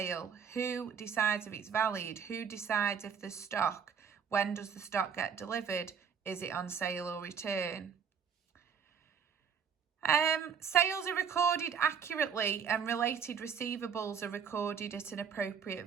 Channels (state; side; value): quieter; left; 6.9 dB